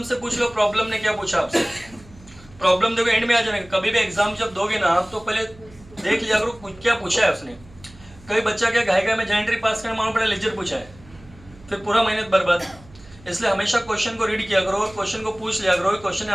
से पूछ लो, प्रॉब्लम ने क्या पूछा आपसे. प्रॉब्लम देखो एंड में आ जाएगा. कभी भी एग्जाम जब दोगे ना आप, तो पहले देख लिया करो क्या पूछा है उसने. कई बच्चा क्या गायका में जेंट्री पास करने मालूम पड़ा लेजर पूछा है, फिर पूरा मेहनत बर्बाद. इसलिए हमेशा क्वेश्चन को रीड किया करो और क्वेश्चन को पूछ लिया करो. क्वेश्चन ने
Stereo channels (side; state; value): right; noise; hum, 23 dB below the sound